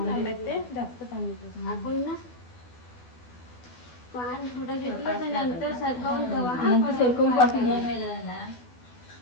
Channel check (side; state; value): right; late; 12 ms